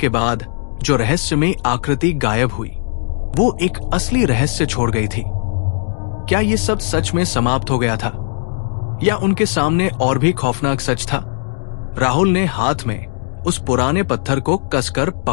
बाद जो रहस्यमयी आकृति गायब हुई, वो एक असली रहस्य छोड़ गई थी। क्या ये सब सच में समाप्त हो गया था या उनके सामने और भी खौफनाक सच था? राहुल ने हाथ में उस पुराने पत्थर को कसकर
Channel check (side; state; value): right; silent; digital silence